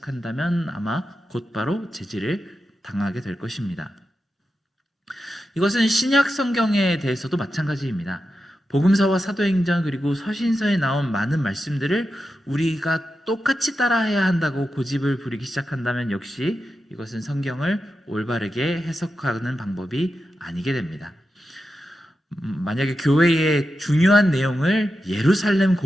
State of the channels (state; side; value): normal; both; correlation 0.89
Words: 아마 곧바로 제지를 당하게 될 것입니다. 이것은 신약 성경에 대해서도 마찬가지입니다. 복음서와 사도행전 그리고 서신서에 나온 많은 말씀들을 우리가 똑같이 따라해야 한다고 고집을 부리기 시작한다면 역시 이것은 성경을 올바르게 해석하는 방법이 아니게 됩니다. 만약에 교회의 중요한 내용을 예루살렘